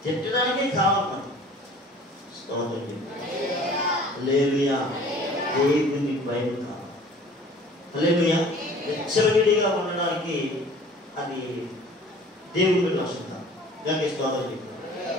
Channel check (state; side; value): normal; both; correlation 0.48